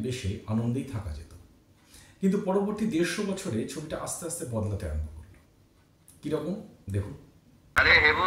বেশে আনন্দেই থাকা যেত। কিন্তু পরবর্তী 150 বছরে ছবিটা আস্তে আস্তে বদলাতে আরম্ভ করল। কিরকম দেখুন। আরে হেবো,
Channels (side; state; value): both; identical; correlation 1.00